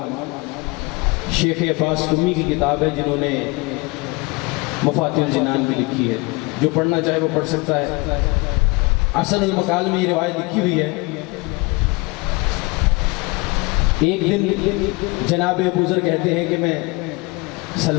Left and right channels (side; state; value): right; quieter; 26.0 dB